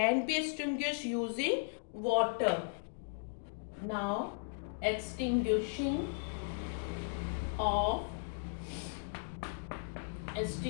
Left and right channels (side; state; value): right; silent; digital silence